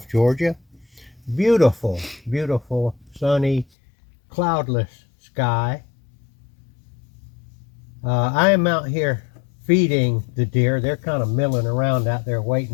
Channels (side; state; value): right; drops out; at 3.7 s